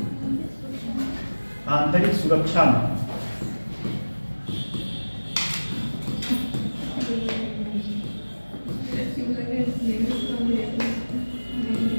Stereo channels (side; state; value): both; inverted; correlation -1.00